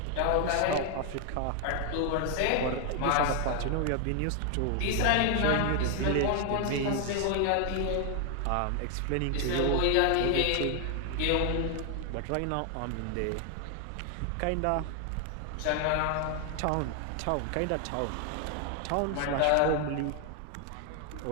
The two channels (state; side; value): different; both; correlation 0.00